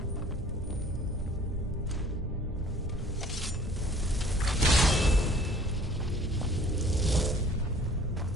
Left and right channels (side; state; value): both; normal; correlation 0.53